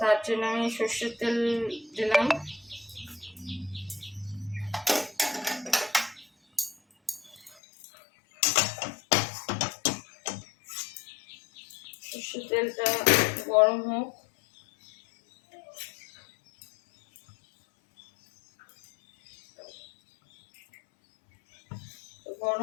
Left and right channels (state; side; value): drops out; right; at 7.6 s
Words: জন্য আমি সর্ষের তেল দিলাম। সর্ষের তেলটা গরম হোক।